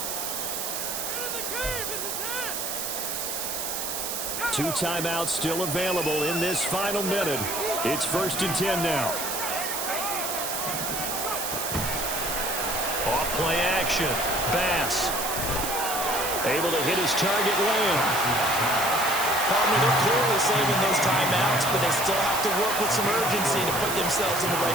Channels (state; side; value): noise; right; hiss, 3 dB below the sound